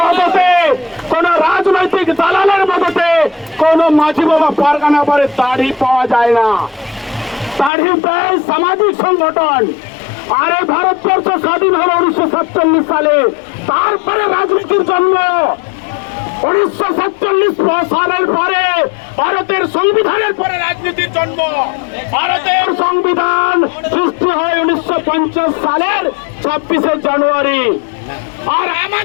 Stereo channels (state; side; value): drops out; right; at 7.7 s